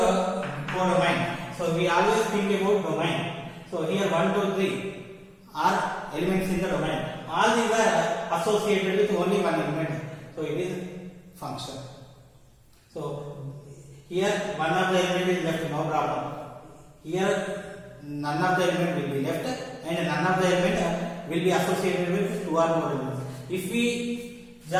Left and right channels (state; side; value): identical; both; correlation 1.00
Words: domain. So we always think about domain. So here 1, 2, 3 are elements in the domain. All these are associated with only one element, so it is function. So here one of the element is left, no problem. Here none of the element will be left and none of the element will be associated with two or more elements. If we